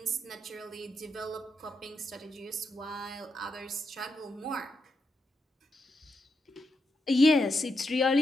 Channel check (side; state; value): both; normal; correlation 0.83